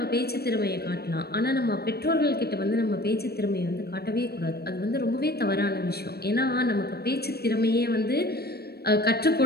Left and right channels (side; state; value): right; late; 0.46 ms